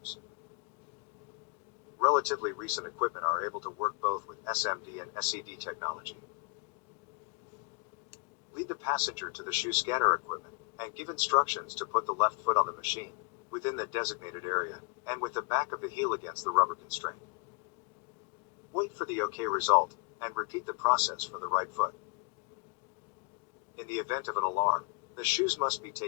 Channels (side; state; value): right; quieter; 32.5 dB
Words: Relatively recent equipment are able to work both with SMD and SED technology. Lead the passenger to the shoe scanner equipment, and give instructions to put the left foot on the machine, within the designated area, and with the back of the heel against the rubber constraint. Wait for the OK result, and repeat the process for the right foot. In the event of an alarm, the shoes must be